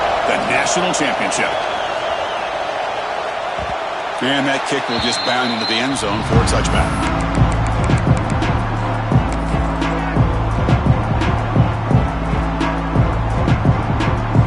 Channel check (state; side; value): identical; both; correlation 1.00